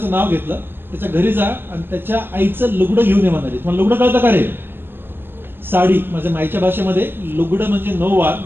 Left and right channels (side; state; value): left; late; 0.10 ms